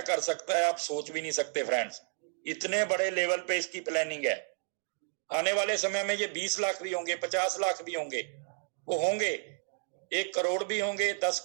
कर सकता है, आप सोच भी नहीं सकते फ्रेंड्स। इतने बड़े लेवल पे इसकी प्लानिंग है। आने वाले समय में ये 20 लाख भी होंगे, 50 लाख भी होंगे, वो होंगे 1 करोड़ भी होंगे, 10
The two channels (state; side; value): silent; left; digital silence